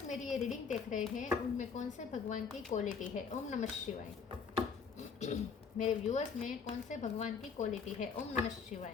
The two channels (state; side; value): quieter; right; 5.8 dB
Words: मेरी ये रीडिंग देख रहे हैं उनमें कौन से भगवान की क्वालिटी है। ओम नमः शिवाय। मेरे व्यूअर्स में कौन से भगवान की क्वालिटी है। ओम नमः